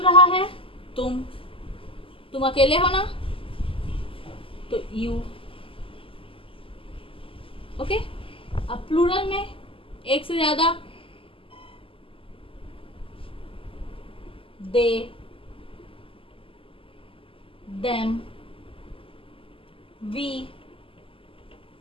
रहा है? तुम अकेले हो ना, तो यू। ओके। अब प्लूरल में एक से ज्यादा, दे, देम, वी,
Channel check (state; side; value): late; right; 0.26 ms